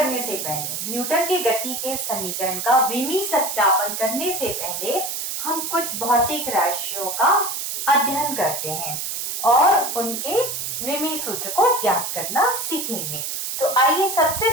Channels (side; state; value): right; noise; hiss, 4 dB below the sound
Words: से पहले, न्यूटन के गति के समीकरण का विमीय सत्यापन करने से पहले हम कुछ भौतिक राशियों का अध्ययन करते हैं और उनके विमीय सूत्र को ज्ञात करना सीखेंगे। तो आइए सबसे